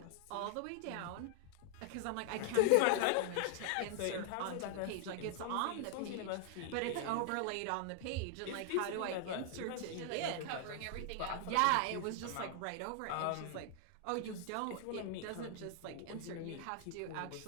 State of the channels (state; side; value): different; both; correlation 0.00